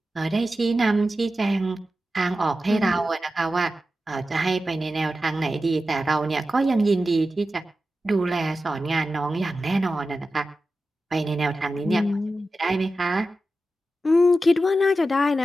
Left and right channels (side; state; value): both; normal; correlation 0.92